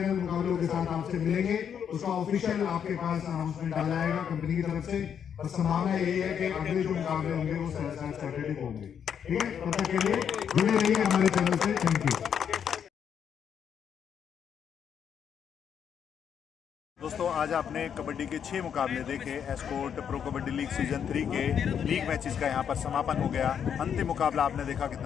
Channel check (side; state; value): right; quieter; 8.1 dB